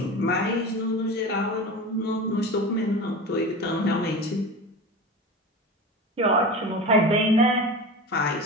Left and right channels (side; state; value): both; normal; correlation 0.30